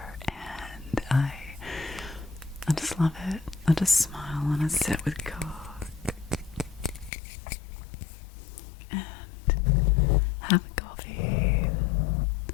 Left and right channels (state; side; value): drops out; right; at 7.1 s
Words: and I just love it. I just smile and I sit with Coke and have a coffee.